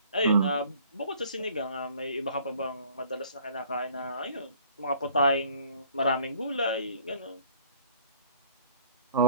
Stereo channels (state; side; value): inverted; both; correlation -0.53